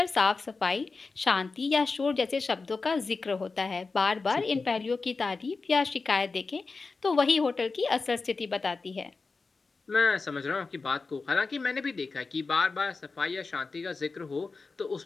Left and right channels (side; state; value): right; quieter; 4.2 dB